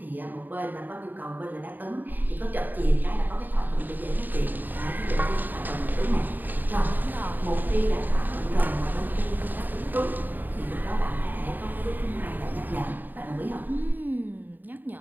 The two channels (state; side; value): late; left; 0.089 ms